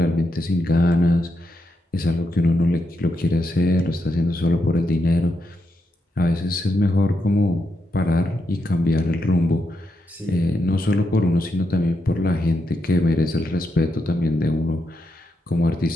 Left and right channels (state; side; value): normal; both; correlation 0.82